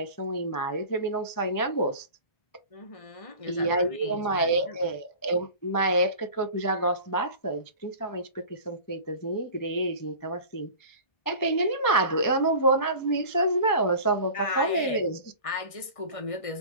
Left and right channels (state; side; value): late; right; 1.6 ms